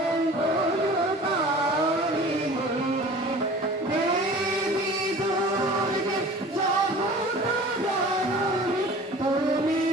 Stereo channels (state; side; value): normal; both; correlation 0.43